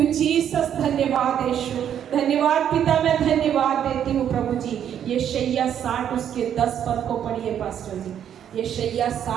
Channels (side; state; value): left; quieter; 9.5 dB